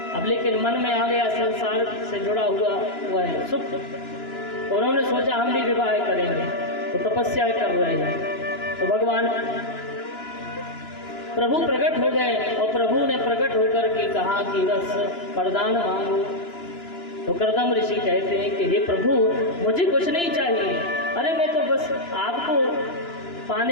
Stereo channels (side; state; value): right; late; 2.9 ms